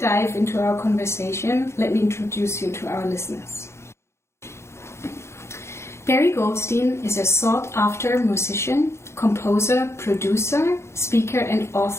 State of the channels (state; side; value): late; right; 0.13 ms